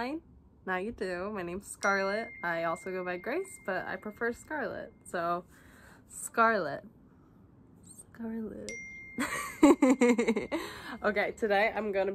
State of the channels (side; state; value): both; identical; correlation 1.00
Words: Now you do. My name's Scarlett. I also go by Grace, but I prefer Scarlett. So, Scarlett. Okay, today I'm gonna